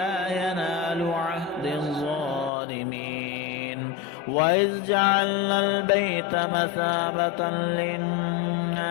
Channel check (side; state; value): right; drops out; at 2.5 s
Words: ينال عهد الظالمين. وإذ جعلنا البيت مثابة